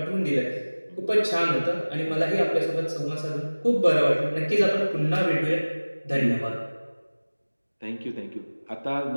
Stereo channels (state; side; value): inverted; both; correlation -1.00